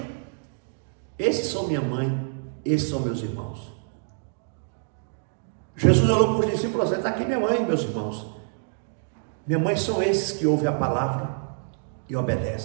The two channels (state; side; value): silent; left; digital silence